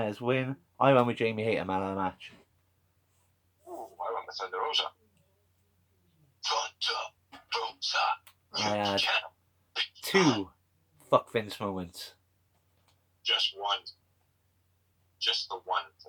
win. I went with Jamie Hater man of the match. Ooh, I went with Thunder Rosa. I had 2 fuck Vince moments. Just one. Just the one.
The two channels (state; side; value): identical; both; correlation 1.00